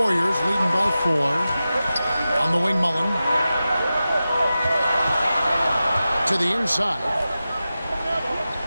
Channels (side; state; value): both; inverted; correlation -0.94